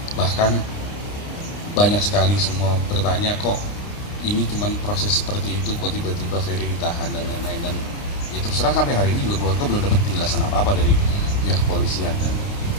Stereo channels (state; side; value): late; right; 29 ms